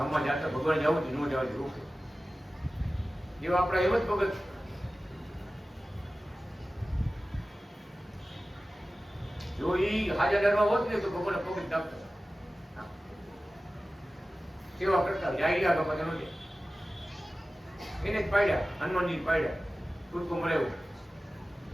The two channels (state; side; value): normal; both; correlation 0.96